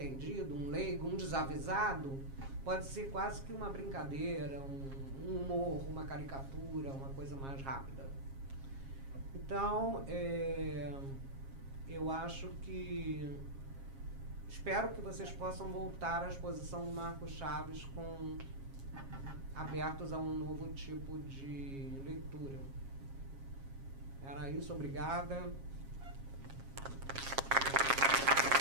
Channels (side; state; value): left; late; 7.4 ms